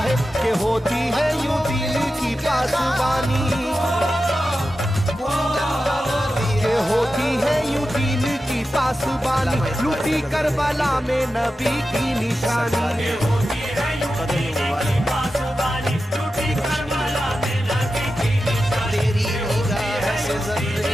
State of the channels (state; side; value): normal; both; correlation 0.92